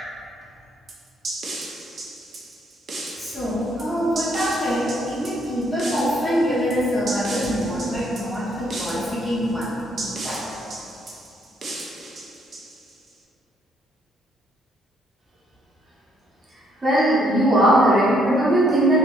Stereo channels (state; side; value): normal; both; correlation 0.69